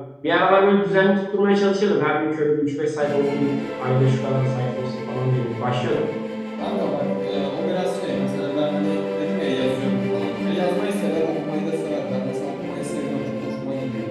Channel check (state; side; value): identical; both; correlation 1.00